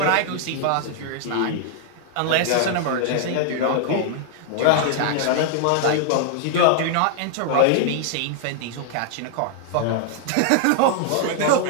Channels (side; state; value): both; different; correlation 0.00